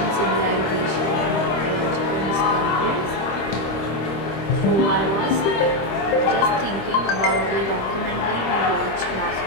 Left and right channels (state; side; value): late; right; 25 ms